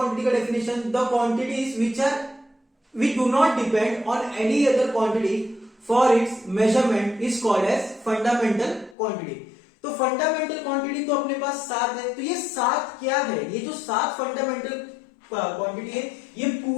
का definition, the quantities which do not depend on any other quantity for its measurement is called as fundamental quantity. तो fundamental quantity तो अपने पास 7 है। तो ये 7 क्या है, ये जो 7 फंडामेंटल क्वांटिटी है, ये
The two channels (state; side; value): drops out; right; at 9.0 s